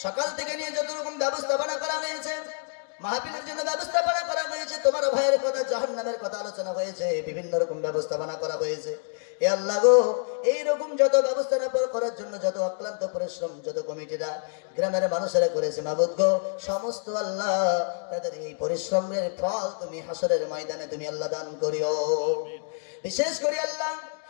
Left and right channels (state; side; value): silent; right; 60 dB below the other